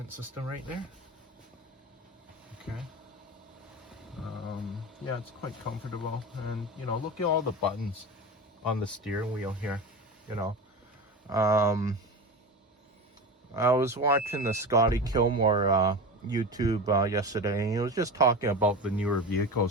system right there. Okay. Yeah, it's quite comfortable, and look at all the buttons on the steering wheel here. I was watching the Scotty Kilmore YouTube yesterday, and he was just talking about the newer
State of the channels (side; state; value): both; normal; correlation 0.27